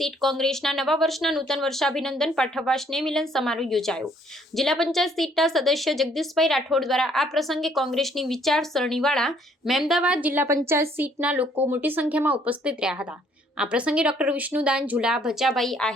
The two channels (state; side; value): normal; both; correlation 0.64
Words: કોંગ્રેસના નવા વર્ષના નૂતન વર્ષાભિનંદન પાઠવવા સ્નેહ મિલન સમારોહ યોજાયો. જિલ્લા પંચાયત સીટના સદસ્ય જગદીશભાઈ રાઠોડ દ્વારા આ પ્રસંગે કોંગ્રેસની વિચારસરણીવાળા મહેમદાવાદ જિલ્લા પંચાયત સીટના લોકો મોટી સંખ્યામાં ઉપસ્થિત રહ્યા હતા. આ પ્રસંગે ડોક્ટર વિષ્ણુદાન ઝુલા, ભચાભાઈ